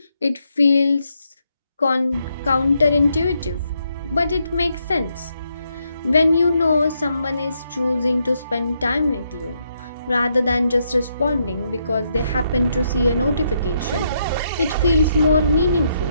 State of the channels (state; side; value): inverted; both; correlation -0.78